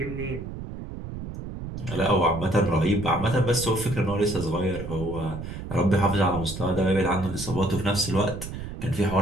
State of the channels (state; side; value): noise; right; rumble, 9 dB below the sound